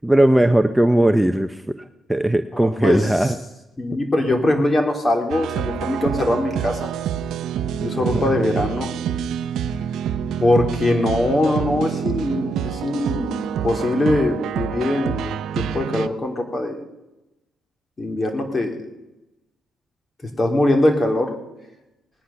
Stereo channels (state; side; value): normal; both; correlation 0.86